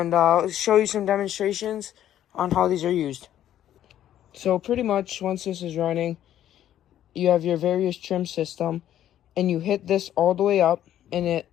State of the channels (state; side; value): quieter; right; 11.5 dB